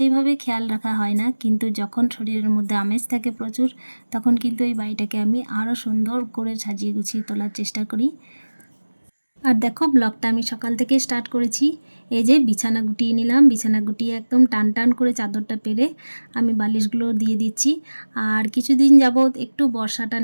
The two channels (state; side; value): inverted; both; correlation -1.00